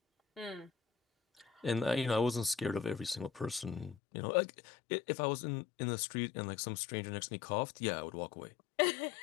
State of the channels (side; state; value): right; drops out; at 4.0 s